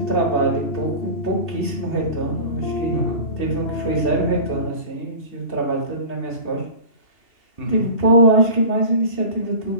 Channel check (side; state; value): right; late; 2.7 ms